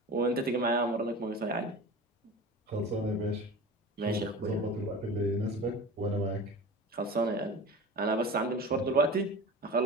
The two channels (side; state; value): both; normal; correlation 0.34